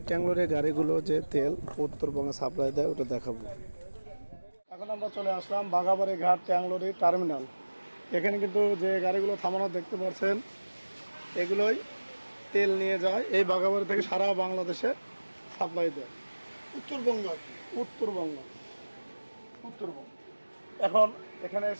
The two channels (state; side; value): inverted; both; correlation -1.00